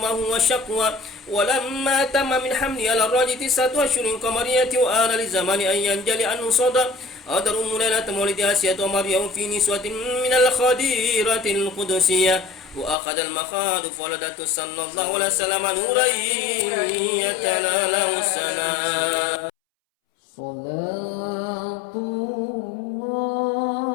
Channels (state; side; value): drops out; right; at 13.0 s